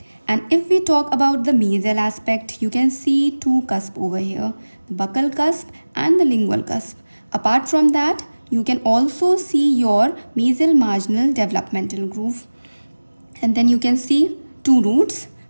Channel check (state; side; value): inverted; both; correlation -1.00